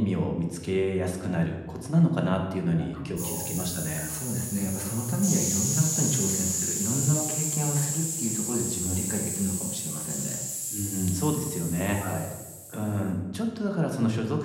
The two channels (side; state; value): both; identical; correlation 1.00